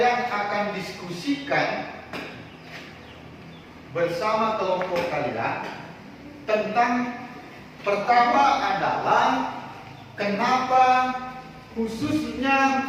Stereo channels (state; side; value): identical; both; correlation 1.00